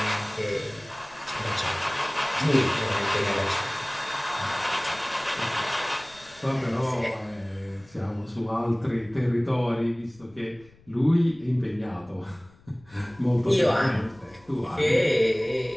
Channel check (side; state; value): left; noise; rumble, 27 dB below the sound